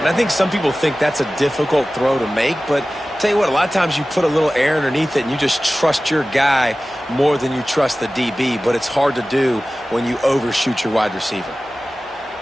I think some people think that's a difficult throw to make, but tell you what, a lot of times you put a little air underneath it and you just trust your guy more than you trust the DB, but it's hard to do when you overshoot your wide receiver.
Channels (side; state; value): both; normal; correlation 0.96